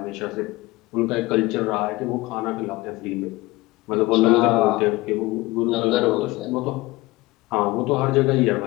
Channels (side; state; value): right; quieter; 20.6 dB